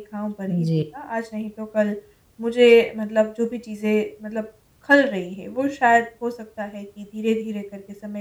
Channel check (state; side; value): identical; both; correlation 1.00